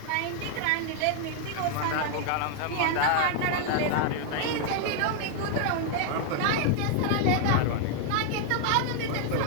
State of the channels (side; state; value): both; different; correlation 0.00